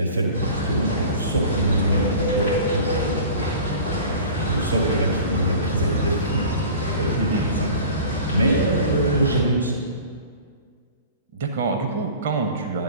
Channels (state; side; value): inverted; both; correlation -0.40